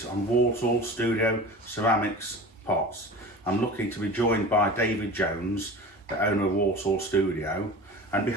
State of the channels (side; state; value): both; normal; correlation 0.35